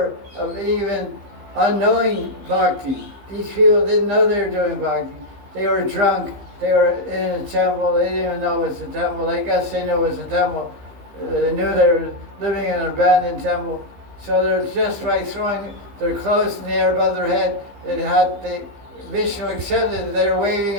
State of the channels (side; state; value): left; late; 15 ms